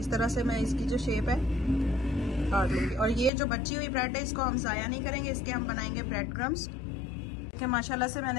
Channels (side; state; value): right; drops out; at 3.3 s